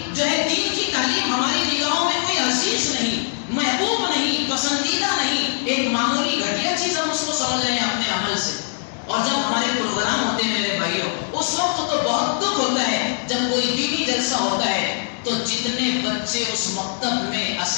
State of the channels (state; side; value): silent; right; digital silence